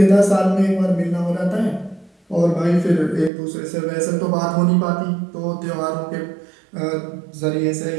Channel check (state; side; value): drops out; left; at 3.3 s